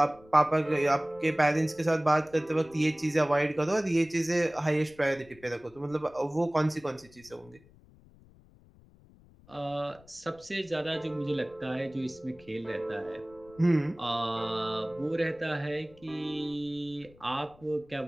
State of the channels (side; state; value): left; noise; rumble, 26 dB below the sound